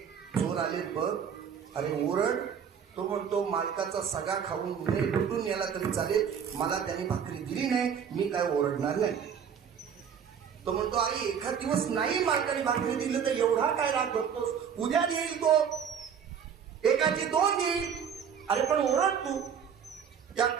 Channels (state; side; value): quieter; left; 7.6 dB